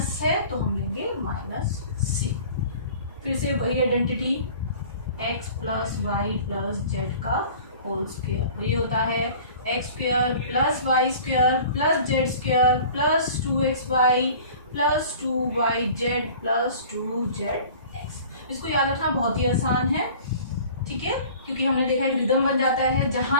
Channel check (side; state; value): both; inverted; correlation -0.45